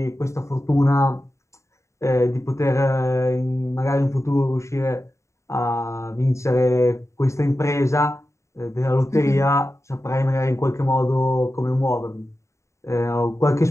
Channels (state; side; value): late; right; 0.14 ms